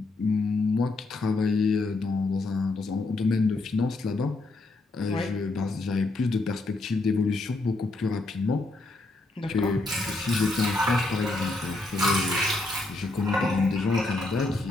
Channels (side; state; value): right; quieter; 3.1 dB